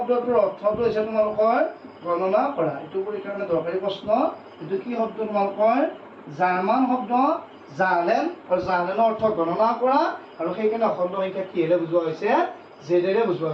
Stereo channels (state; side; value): identical; both; correlation 1.00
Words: অৰ্থটো হৈছে তোমালোকৰ গণনা কৰা এইটো পৰীক্ষাৰ কাৰণে দৰকাৰী প্ৰশ্ন এইটো কি শব্দ তোমালোকৰ জাৰ্মান শব্দ জাৰ্লেন আৰু জাৰ্লেনৰ অৰ্থ গণনা কৰা আৰু সেইকাৰণে অখণ্ড সংখ্যা কিহেৰে বুজোৱা হৈছে জেডেৰে বুজোৱা